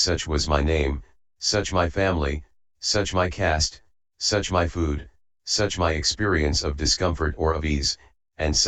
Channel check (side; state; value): both; identical; correlation 1.00